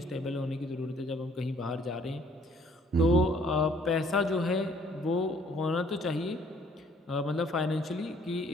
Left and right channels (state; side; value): normal; both; correlation 0.60